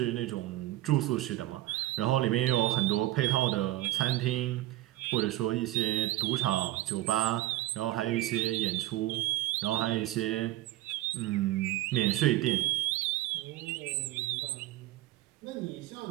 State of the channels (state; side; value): quieter; left; 16.0 dB